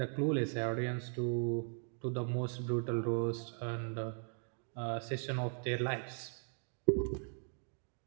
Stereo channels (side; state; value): left; silent; 52 dB below the other